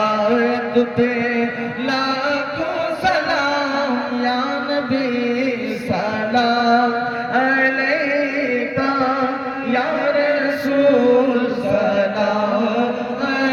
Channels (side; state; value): both; identical; correlation 1.00